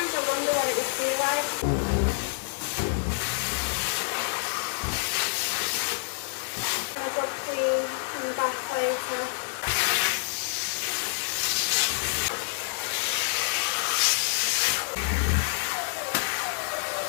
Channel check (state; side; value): silent; right; digital silence